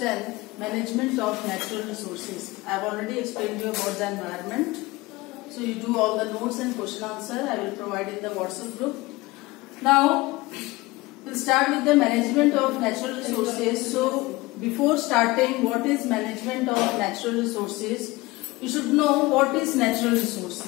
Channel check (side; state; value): right; quieter; 21.1 dB